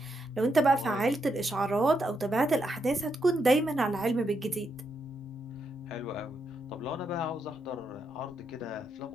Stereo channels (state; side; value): normal; both; correlation 0.81